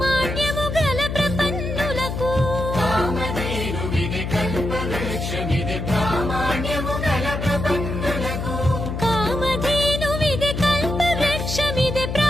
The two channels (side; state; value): left; noise; hum, 4 dB below the sound